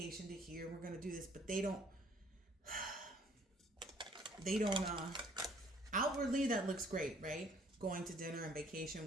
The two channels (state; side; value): normal; both; correlation 0.59